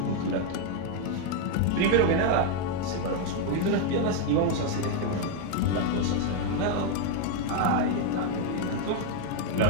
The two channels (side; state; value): both; different; correlation 0.01